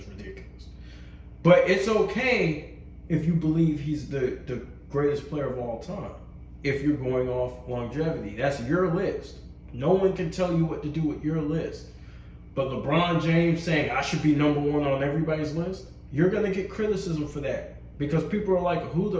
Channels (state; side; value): identical; both; correlation 1.00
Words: ridiculous. But it's okay if you believe he's the greatest player of all time. If you're going off longevity, that's your list. No one can tell you what to do with your list. But LeBron James saying I should be number one on everybody's list, you're going to get criticism for that. Because people are like, who